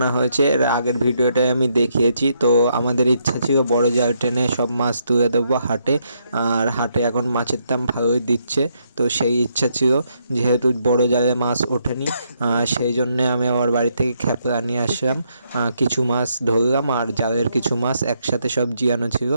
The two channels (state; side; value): inverted; both; correlation -0.76